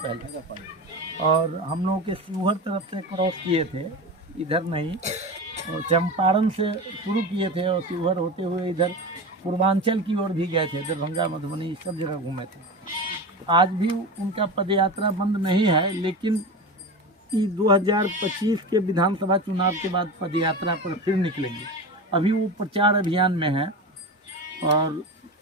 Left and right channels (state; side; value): normal; both; correlation 0.26